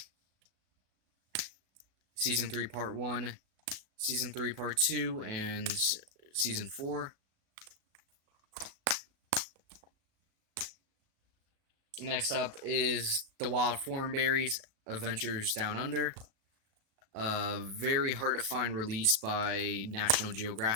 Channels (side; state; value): left; late; 37 ms